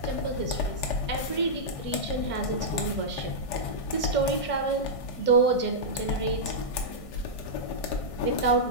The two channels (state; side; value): late; right; 1.6 ms